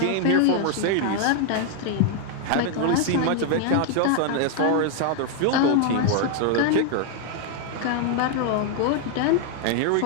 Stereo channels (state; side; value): different; both; correlation 0.00